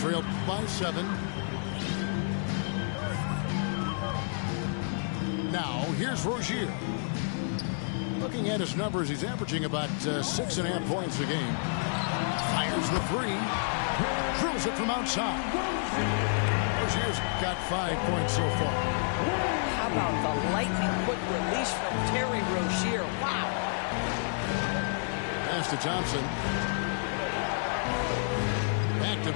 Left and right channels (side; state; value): right; silent; digital silence